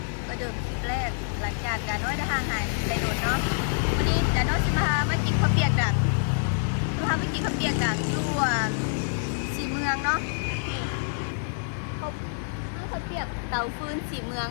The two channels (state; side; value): silent; right; 55 dB below the other